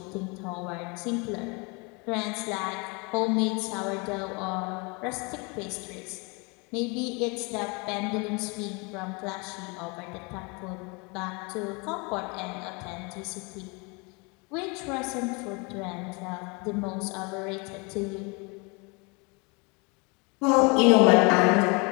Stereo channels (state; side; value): quieter; right; 30.1 dB